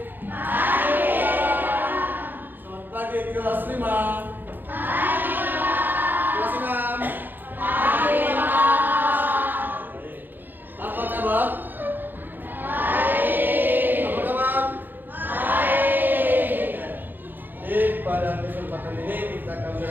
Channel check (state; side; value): late; left; 0.090 ms